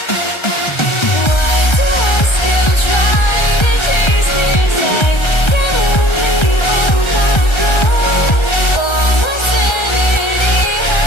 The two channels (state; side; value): late; right; 1.3 ms